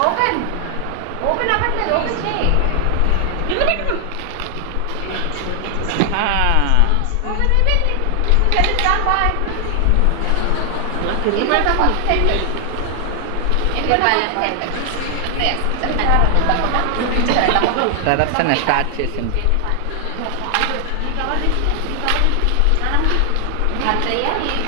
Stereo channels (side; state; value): both; different; correlation 0.00